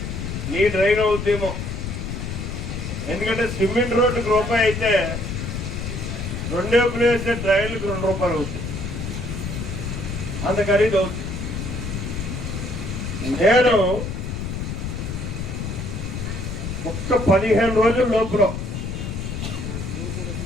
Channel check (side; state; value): left; noise; rumble, 5 dB below the sound